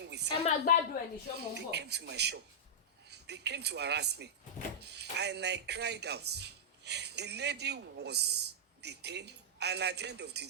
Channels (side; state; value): both; normal; correlation -0.10